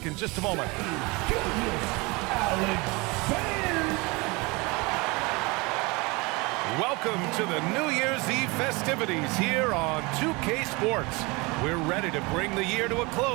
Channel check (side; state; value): left; quieter; 25.9 dB